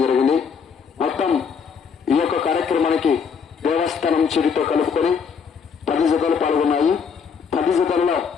జరిగింది. మొత్తం ఈ యొక్క కార్యక్రమానికి దేవస్థానం చిరితో కలుపుకొని 10 జతలు పాల్గొన్నాయి. 10 జతలలో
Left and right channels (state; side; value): quieter; right; 6.3 dB